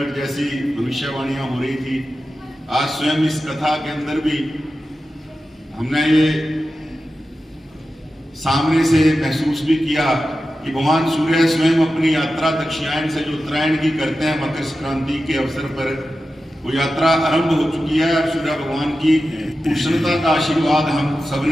जैसी भविष्यवाणियां हो रही थी, आज स्वयं इस कथा के अंदर भी हमने ये सामने से महसूस भी किया कि भगवान सूर्य स्वयं अपनी यात्रा दक्षिणायन से जो उत्तरायण की करते हैं मकर संक्रांति के अवसर पर, वो यात्रा आरंभ हो चुकी है। सूर्य भगवान की उष्णता का आशीर्वाद हम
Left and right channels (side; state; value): both; normal; correlation 0.92